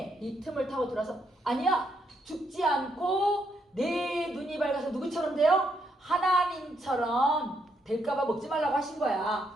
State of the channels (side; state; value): both; normal; correlation 0.76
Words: 타고 들어서 아니야. 죽지 않고 내 눈이 밝아서 누구처럼 돼요? 하나님처럼 될까봐 먹지 말라고 하신